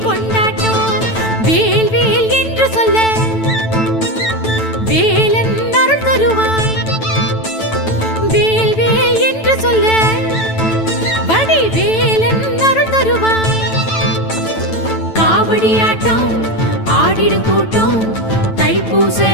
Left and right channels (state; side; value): late; right; 9.1 ms